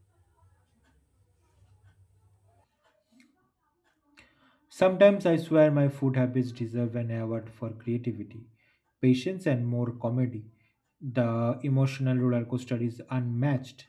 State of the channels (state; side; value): identical; both; correlation 1.00